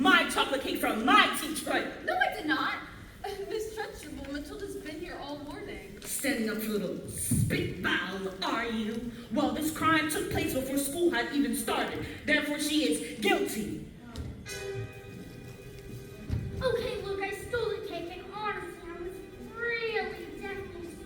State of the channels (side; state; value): both; identical; correlation 1.00